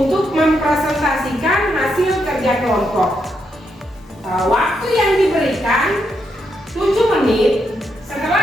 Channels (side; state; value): both; normal; correlation 0.80